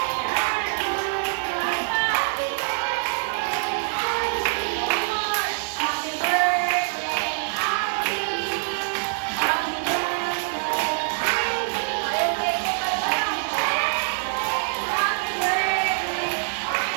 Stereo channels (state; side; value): silent; left; digital silence